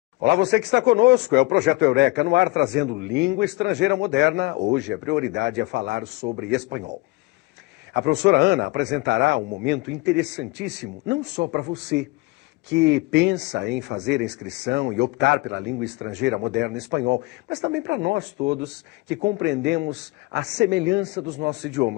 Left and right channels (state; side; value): quieter; right; 23.0 dB